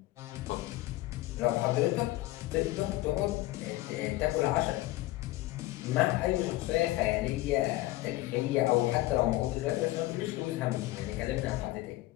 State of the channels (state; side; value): quieter; right; 17.7 dB